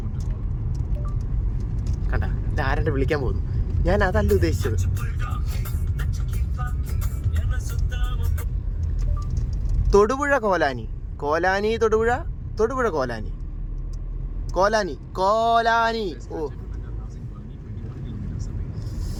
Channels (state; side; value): identical; both; correlation 1.00